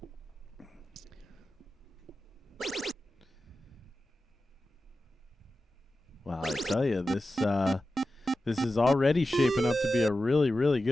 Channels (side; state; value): both; normal; correlation 0.93